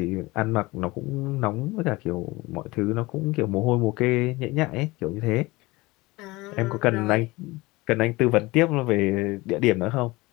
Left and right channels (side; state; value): right; quieter; 21.8 dB